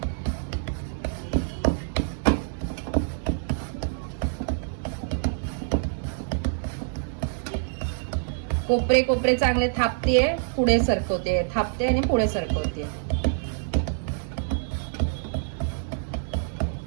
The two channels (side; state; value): left; silent; digital silence